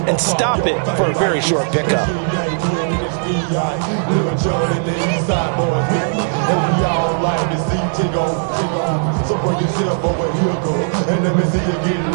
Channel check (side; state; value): left; silent; digital silence